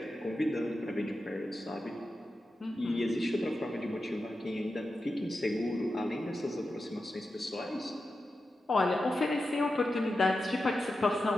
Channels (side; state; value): both; normal; correlation 0.91